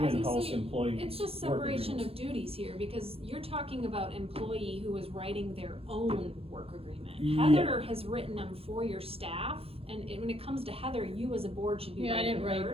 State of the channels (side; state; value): left; late; 0.28 ms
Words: was gonna in-house say, employee. it's just work separation agreements. of duties here, because you're talking about employee who is writing their own work agreement. Yeah. Heather has written them for your staff, and when it comes to Heather, you as a board should be Yeah, I writing didn't write